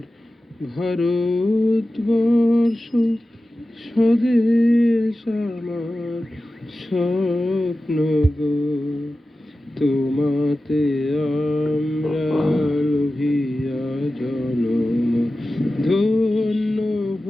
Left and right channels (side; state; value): both; normal; correlation 0.94